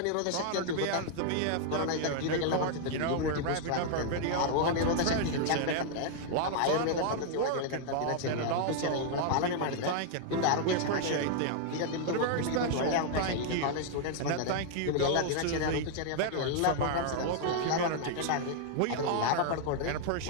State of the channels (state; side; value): different; both; correlation 0.00